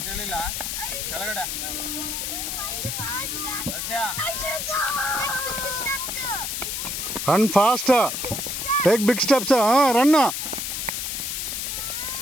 ಹೇಳಿಲ್ಲ ಕೆಳಗಡೆ ರಶ್ಯಾ Run fast. Take big steps. Run.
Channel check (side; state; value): left; noise; hiss, 3 dB below the sound